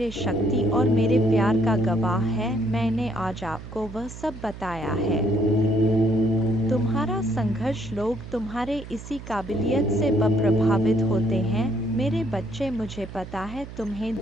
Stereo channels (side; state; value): right; noise; hum, 13 dB below the sound